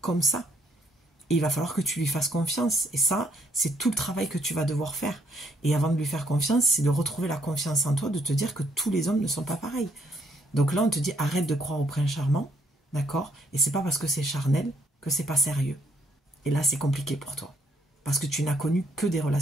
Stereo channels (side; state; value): both; normal; correlation 0.69